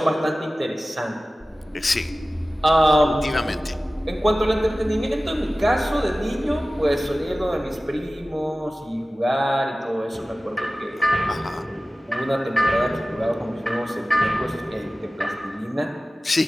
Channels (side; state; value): both; normal; correlation 0.97